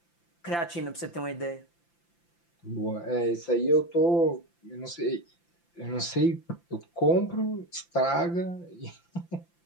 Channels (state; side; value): late; right; 5.8 ms